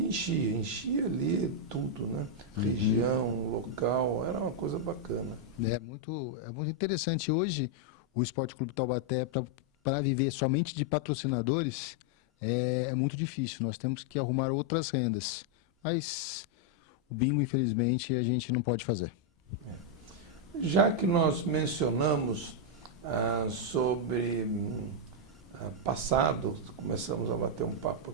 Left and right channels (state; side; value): normal; both; correlation -0.02